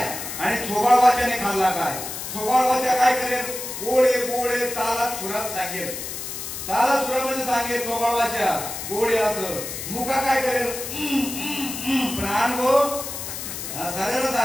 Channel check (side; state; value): left; noise; hiss, 7 dB below the sound